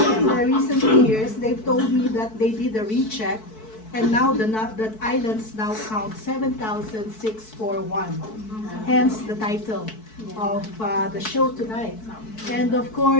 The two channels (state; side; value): late; right; 4.6 ms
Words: in the recent years, they've told me that they did a recheck, and now the islands now count 7,641. Hence the title of the show tonight. And of